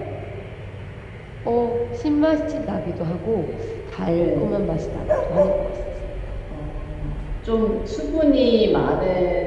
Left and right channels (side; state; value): both; identical; correlation 1.00